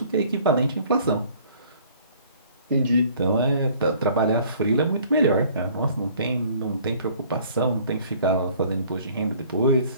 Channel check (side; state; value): both; inverted; correlation -0.55